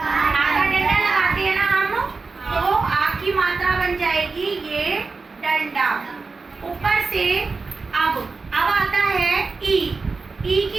डंडा लगाते हैं ना हम, तो आ की मात्रा बन जाएगी ये डंडा। ऊपर से अब आता है ई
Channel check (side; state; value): left; quieter; 4.2 dB